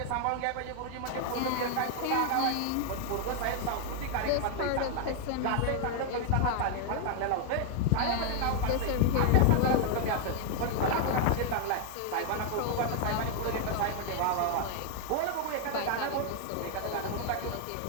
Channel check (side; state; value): both; different; correlation 0.00